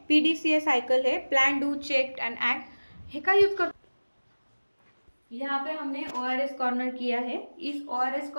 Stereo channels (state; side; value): inverted; both; correlation -1.00